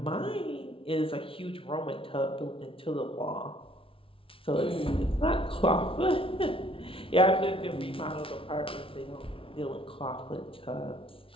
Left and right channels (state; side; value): late; right; 0.26 ms